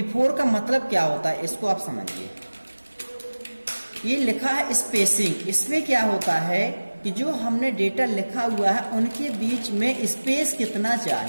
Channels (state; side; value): inverted; both; correlation -1.00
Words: का मतलब क्या होता है, इसको आप समझिए। ये लिखा है स्पेसिंग, इसमें क्या होता है कि जो हमने डेटा लिखा हुआ है उनके बीच में स्पेस कितना